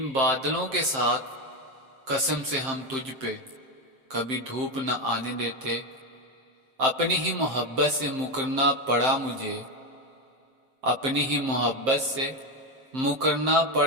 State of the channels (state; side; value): late; left; 7.6 ms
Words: بادلوں کے ساتھ، قسم سے ہم تجھ پہ کبھی دھوپ نہ آنے دیتے۔ اپنی ہی محبت سے مکرنا پڑا مجھے، اپنی ہی محبت سے مکرنا